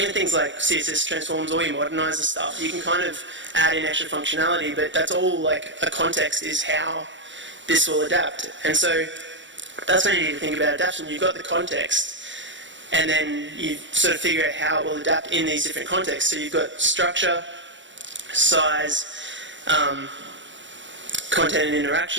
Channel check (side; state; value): left; late; 0.54 ms